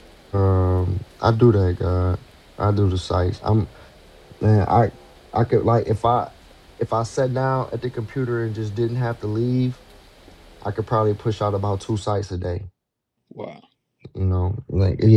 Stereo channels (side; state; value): both; identical; correlation 1.00